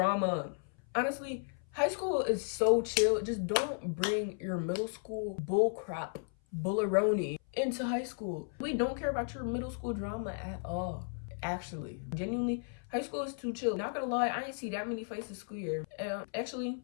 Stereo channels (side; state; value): right; silent; 55 dB below the other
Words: Honestly, high school is so chill. Just don't bring your middle school bullcrap, bullaroni into high school. We don't care about your middle school drama at all. Actually, genuinely, high school is too chill. Not gonna lie, I ain't see that many fights this school year. Actually,